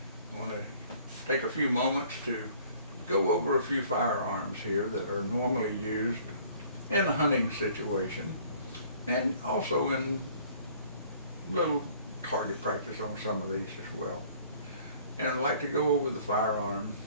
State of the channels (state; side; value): inverted; both; correlation -0.55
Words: I want to take a few moments to go over a few firearms here that are normally used in a hunting situation and also in little target practice on some of these as well. And I'd like to go over the firearm,